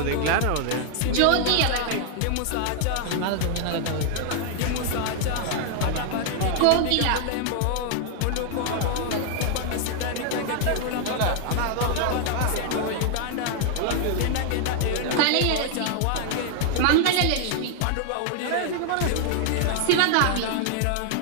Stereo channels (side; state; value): both; different; correlation 0.00